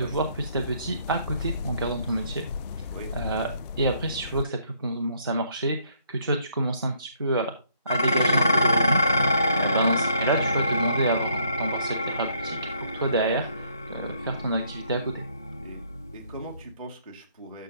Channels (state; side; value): inverted; both; correlation -0.68